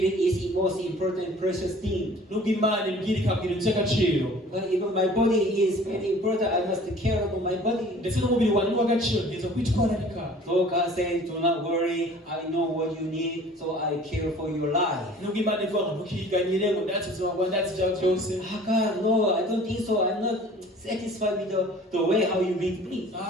is the most important and precious thing. nubwo Imana imbwira ikabwira iby'agaciro. But even my body is very important. I must take care of my body. ndetse n'umubiri wanjye ni uw'agaciro ngiye kwitwararika. Though God says do not worry, I know what you need, so I care for your life. nubwo Imana ivuga ngo ntukiganyire ngo ndatse ubuzima bwawe ndatse ibyawe byose. God, no, I don't think so. I'm not satisfied with the way how you lead me.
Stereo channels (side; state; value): both; normal; correlation 0.48